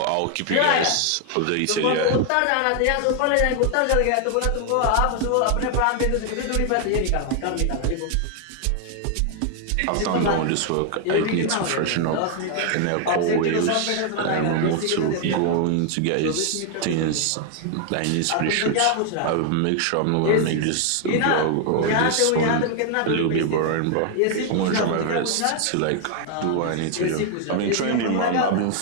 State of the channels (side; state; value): both; different; correlation 0.00